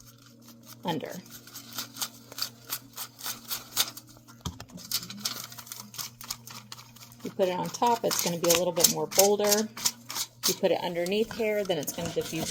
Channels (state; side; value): identical; both; correlation 1.00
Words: under. You put it on top, it's going to be a little bit more bolder. You put it underneath hair, then it's going to